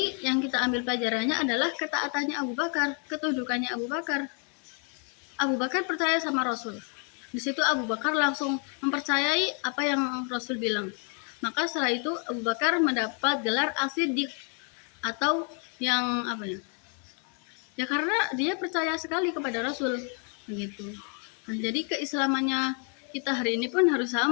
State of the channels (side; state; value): right; quieter; 39.5 dB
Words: yang kita ambil pelajarannya adalah ketaatannya Abu Bakar, ketundukannya Abu Bakar. Abu Bakar percaya sama Rasul. Di situ Abu Bakar langsung mempercayai apa yang Rasul bilang. Maka setelah itu Abu Bakar mendapat gelar As-Siddiq atau yang apa ya? Ya karena dia percaya sekali kepada Rasul begitu. Nah, jadi keislamannya kita hari ini pun harus